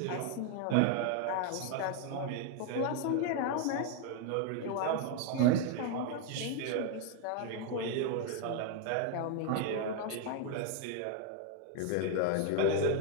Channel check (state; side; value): different; both; correlation 0.01